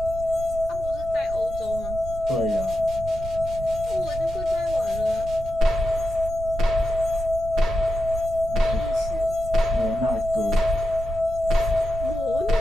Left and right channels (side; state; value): right; noise; rumble, 10 dB below the sound